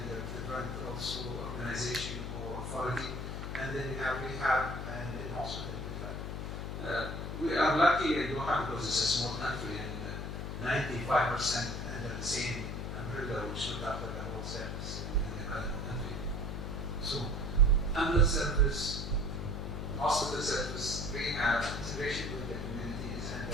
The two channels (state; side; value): noise; left; hum, 4 dB below the sound